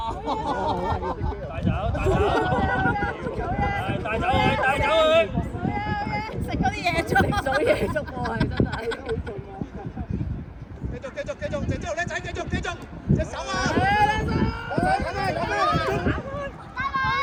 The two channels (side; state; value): both; identical; correlation 1.00